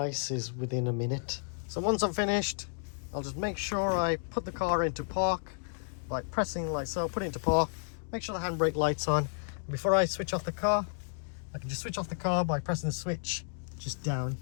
within a minute. So once I'm finished, I'll just make sure I put the car into park by pressing like so, put it into park, make sure the handbrake light's on. And before I switch off the car, I can just switch off the car by pressing the switch just down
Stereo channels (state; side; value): silent; right; digital silence